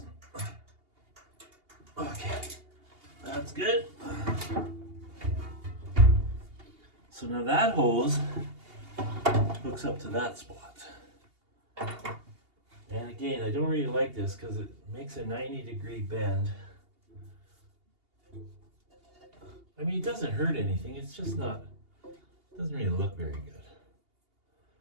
Okay, that's good. So now that hose hooks up to that spot. And again, I don't really like this because it makes a 90-degree bend. I mean, it doesn't hurt anything. It's just not, doesn't really look very good.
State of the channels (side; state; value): left; late; 2.8 ms